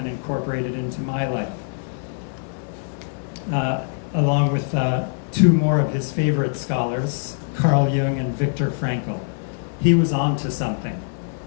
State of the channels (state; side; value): silent; right; digital silence